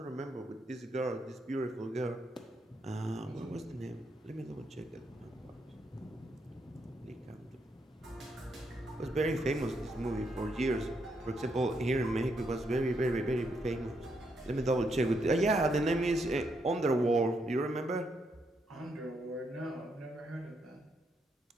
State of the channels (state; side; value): normal; both; correlation 0.78